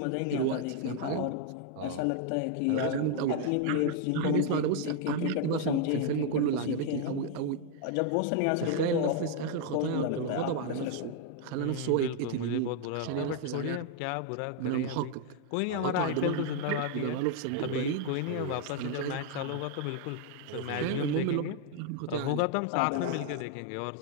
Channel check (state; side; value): different; both; correlation 0.00